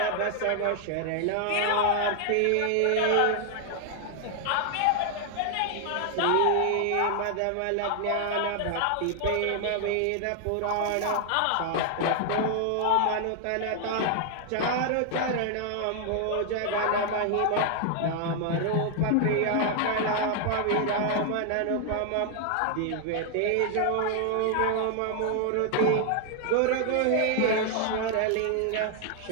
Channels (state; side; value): different; both; correlation 0.00